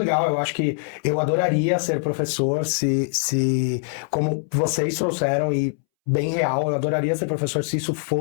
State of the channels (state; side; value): silent; right; 64 dB below the other